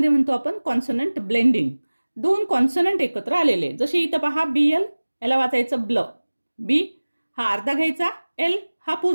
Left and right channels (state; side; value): inverted; both; correlation -1.00